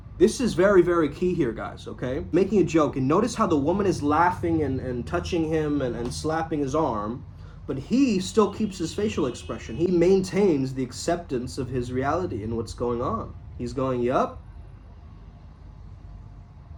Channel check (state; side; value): identical; both; correlation 1.00